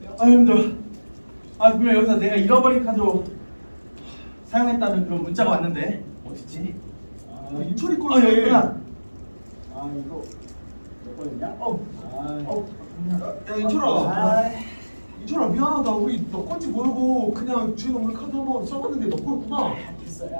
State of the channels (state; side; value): inverted; both; correlation -1.00